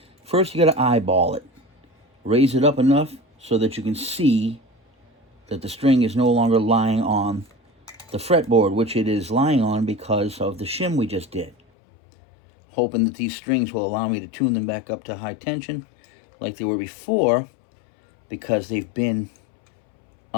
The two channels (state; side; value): drops out; right; at 11.6 s